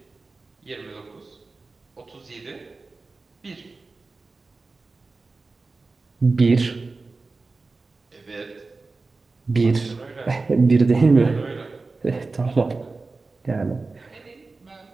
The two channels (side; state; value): left; quieter; 3.7 dB